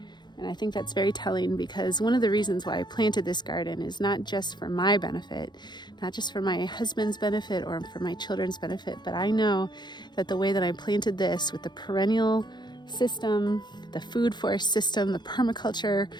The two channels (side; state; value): right; late; 0.21 ms